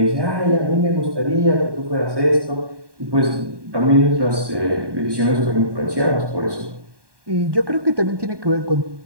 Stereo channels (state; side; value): late; left; 1.2 ms